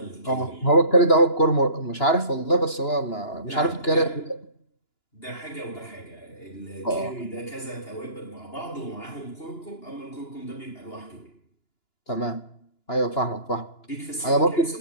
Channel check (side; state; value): right; late; 2.9 ms